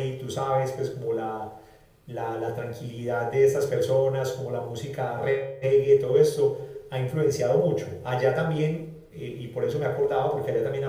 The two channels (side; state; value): both; identical; correlation 1.00